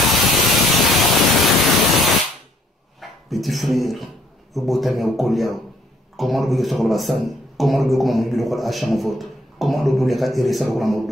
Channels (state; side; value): normal; both; correlation 0.64